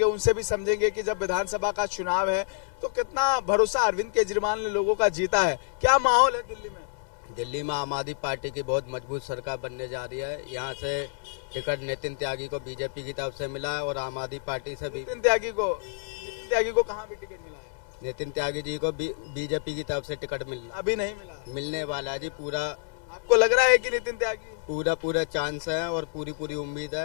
उनसे भी समझेंगे कि जब विधानसभा का चुनाव है तो कितना भरोसा अरविंद केजरीवाल ने लोगों का जीता है। क्या माहौल है दिल्ली में? दिल्ली में आम आदमी पार्टी की बहुत मजबूत सरकार बनने जा रही है। यहाँ से टिकट नितिन त्यागी को बीजेपी की तरफ से मिला है और आम आदमी पार्टी से भी। नितिन त्यागी को कहाँ भी टिकट मिला है? नितिन त्यागी जी को बीजेपी की तरफ से टिकट अभी नहीं मिला, मिलने वाला है जी। पूरा आपको लग रहा है कि नितिन त्यागी? पूरा चांस है और पूरी उम्मीद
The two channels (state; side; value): silent; right; 59 dB below the other